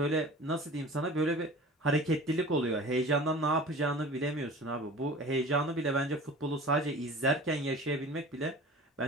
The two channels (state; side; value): normal; both; correlation 0.40